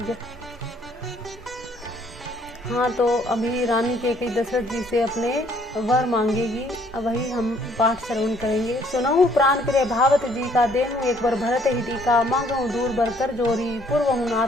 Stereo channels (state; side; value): normal; both; correlation 0.63